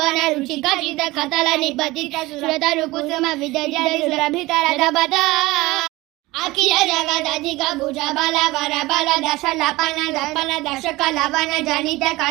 रुचिक चित कतल निपतित सुरतरु कुसुम विदजित सुरभितर दबत अखिल जगद अधिक भुज बल वर बल दश लपन दपन दशक लवन जनित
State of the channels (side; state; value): left; quieter; 20.1 dB